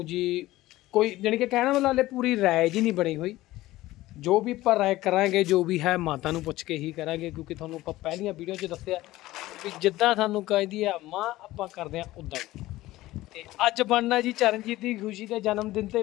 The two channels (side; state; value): right; quieter; 17.0 dB